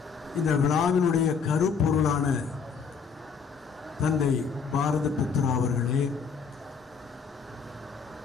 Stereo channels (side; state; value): right; quieter; 5.9 dB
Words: இந்த விழாவினுடைய கருப்பொருளான தந்தை பாரத புத்ரா அவர்களே,